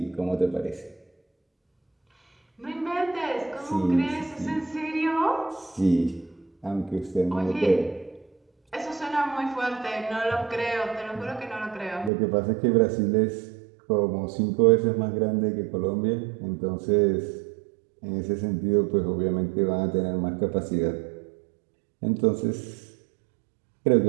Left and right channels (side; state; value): left; drops out; at 12.1 s